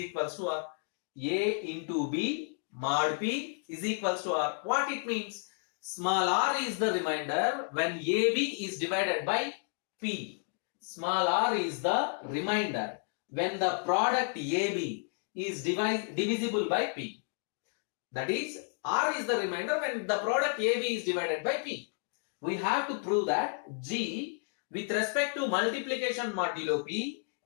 to r. A into b mod p is equals to r. What it means? Small r is the remainder when ab is divided by p. Small r is the remainder when the product ab is divisible by p. That is, r is the remainder when the product ab is divided by p. We have to prove that G with respect to multiplication modulo P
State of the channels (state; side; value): silent; right; 56 dB below the other